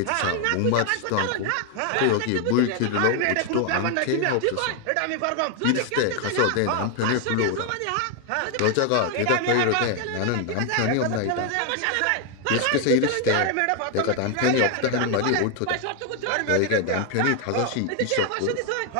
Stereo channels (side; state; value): both; different; correlation 0.00